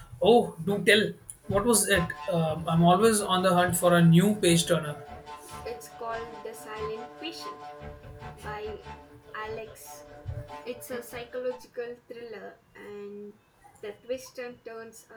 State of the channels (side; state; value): both; identical; correlation 1.00